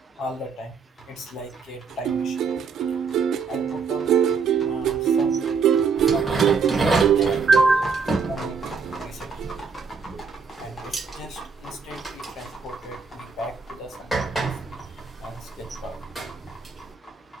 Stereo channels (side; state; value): left; quieter; 5.4 dB